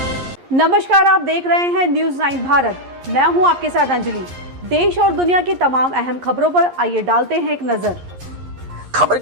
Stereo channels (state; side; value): late; left; 11 ms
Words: नमस्कार, आप देख रहे हैं न्यूज़ 9 भारत। मैं हूं आपके साथ अंजलि। देश और दुनिया की तमाम अहम खबरों पर आइए डालते हैं एक नजर। खबर